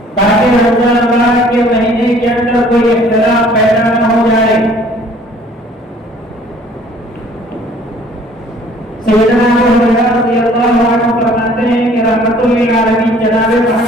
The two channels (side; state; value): both; normal; correlation 0.55